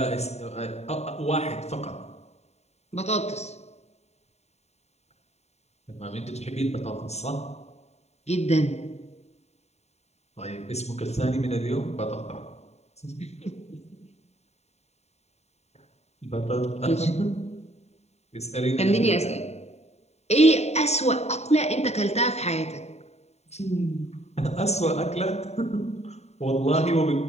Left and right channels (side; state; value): right; late; 0.32 ms